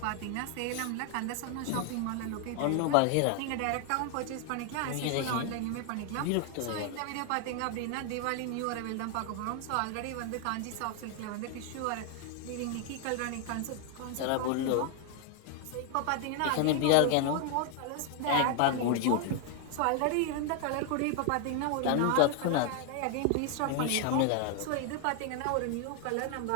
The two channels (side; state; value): both; different; correlation 0.00